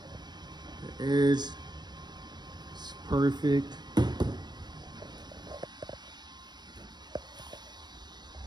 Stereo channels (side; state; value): left; late; 0.21 ms